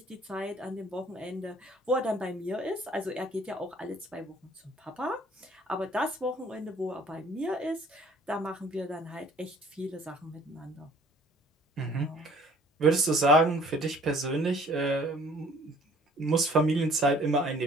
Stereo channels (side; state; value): both; normal; correlation 0.55